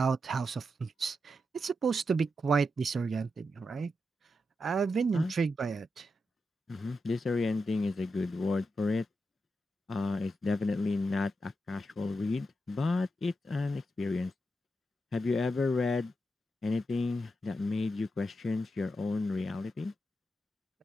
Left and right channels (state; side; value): normal; both; correlation 0.86